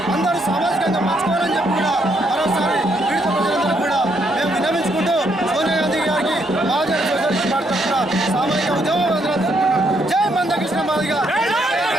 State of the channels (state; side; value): normal; both; correlation 0.74